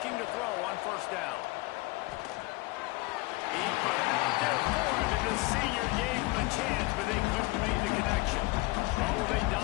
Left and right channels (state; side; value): quieter; right; 22.6 dB